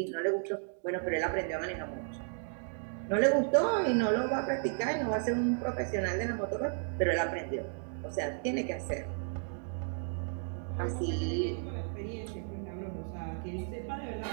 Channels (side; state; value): left; silent; 55 dB below the other